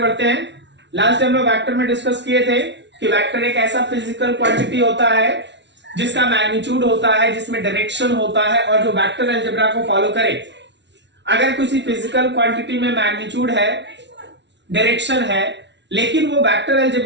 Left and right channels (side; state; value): left; late; 0.51 ms